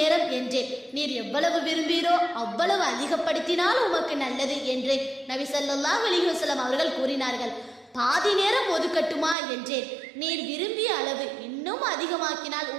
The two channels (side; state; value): left; drops out; at 9.3 s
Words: என்றேன். நீர் எவ்வளவு விரும்பீரோ அவ்வளவு அதிகப்படுத்தினால் உமக்கு நல்லது என்று நபி ஸல்லல்லாஹு அலைஹி வஸல்லம் அவர்கள் கூறினார்கள். பாதி நேரம் ஒதுக்கட்டுமா என்றேன். நீர் விரும்பிய அளவு இன்னும் அதிகமாக்கினால்